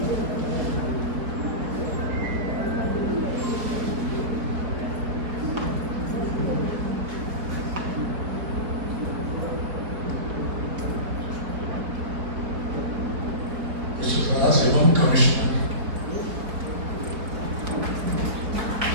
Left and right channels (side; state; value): left; late; 4.3 ms